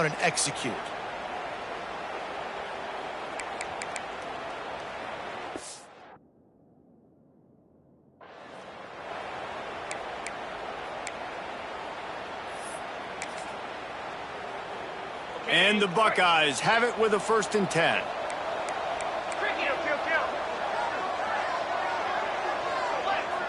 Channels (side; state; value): both; identical; correlation 1.00